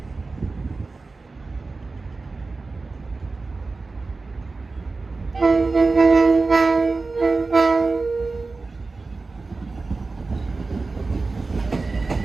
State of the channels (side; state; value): left; quieter; 3.8 dB